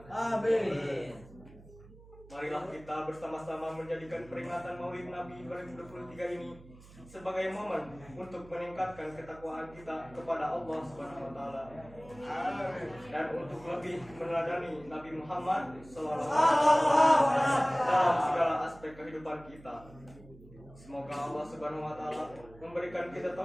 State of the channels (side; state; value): right; noise; hum, 21 dB below the sound